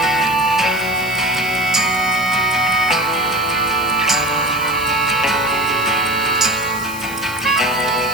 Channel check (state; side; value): noise; right; hiss, 14 dB below the sound